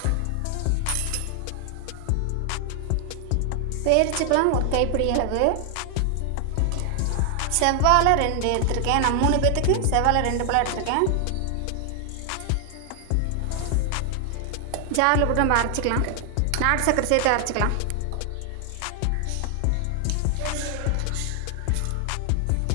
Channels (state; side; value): different; both; correlation 0.00